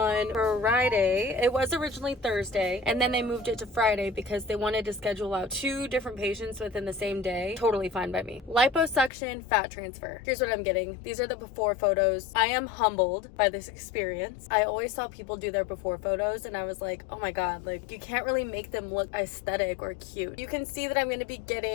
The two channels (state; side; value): drops out; right; at 9.1 s